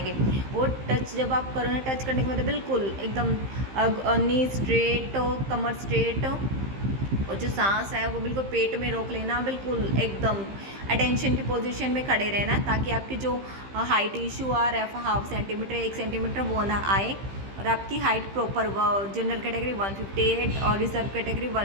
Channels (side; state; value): left; late; 15 ms